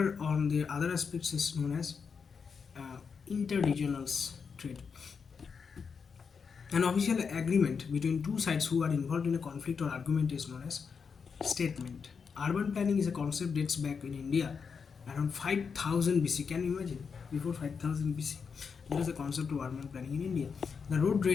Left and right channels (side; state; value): right; quieter; 5.9 dB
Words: on their other aspects, is known as interregional trade. An official agreement between two sides who are involved in a conflict or argument is known as statement. Urban planning is a concept dates back in India around 5000 BC. Can you imagine? Before 5000 BC, there is a concept of urban planning in India. The road